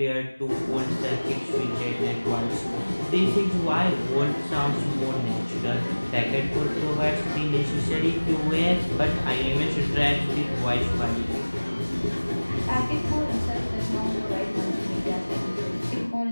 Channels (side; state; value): both; inverted; correlation -1.00